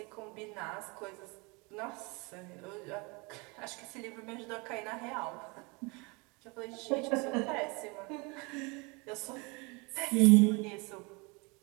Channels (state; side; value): quieter; left; 28.8 dB